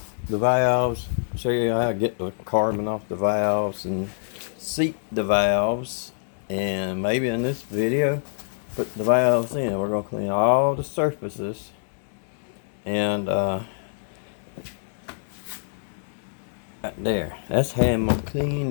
the valves, show you how to get the carbon off the valves and seat the valves, and maybe in this video put the valves in. We're gonna clean all the surfaces and right there. That's how I'm gonna clean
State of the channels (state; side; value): silent; right; digital silence